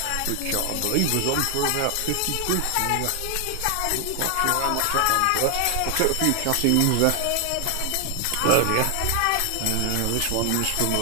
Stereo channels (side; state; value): both; different; correlation 0.00